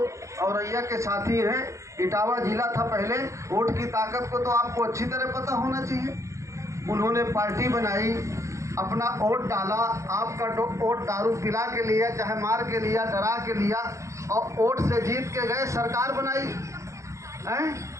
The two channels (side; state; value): left; late; 0.15 ms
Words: औरैया के साथी हैं, इटावा जिला था पहले, वोट की ताकत को तो आपको अच्छी तरह पता होना चाहिए। उन्होंने पार्टी बनाई, अपना वोट डाला, आपका वोट दारू पिला के लिया, चाहे मार के लिया, डरा के लिया, और वोट से जीत के गए, सरकार बनाई हैं।